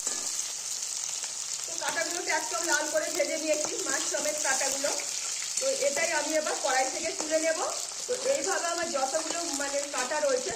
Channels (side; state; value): both; identical; correlation 1.00